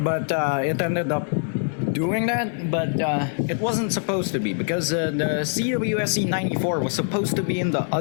but it ended up doing that, but it wasn't supposed to be, because the CWSE94 was supposed to be in the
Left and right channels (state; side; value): silent; right; digital silence